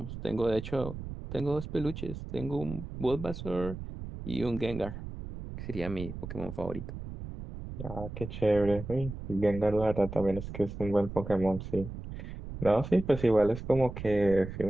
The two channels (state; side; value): noise; right; rumble, 9 dB below the sound